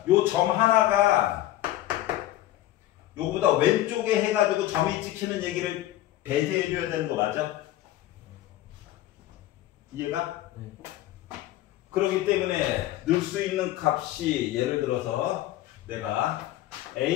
요 점 하나가 요거보다 왼쪽에 해가지고 점이 찍히는 얘기를 배제해 줘야 되는 거 맞아? 이해가? 네. 그렇기 때문에 넣을 수 있는 값이 예를 들어서 내가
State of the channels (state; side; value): quieter; right; 14.4 dB